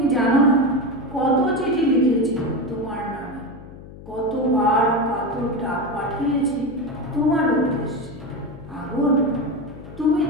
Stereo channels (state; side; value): noise; left; hum, 16 dB below the sound